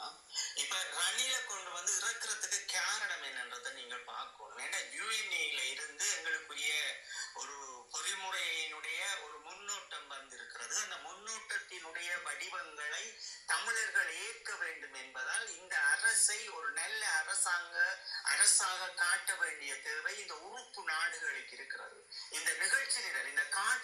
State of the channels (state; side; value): identical; both; correlation 1.00